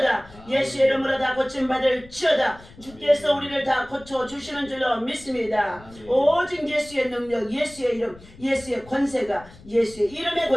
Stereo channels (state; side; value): noise; left; rumble, 22 dB below the sound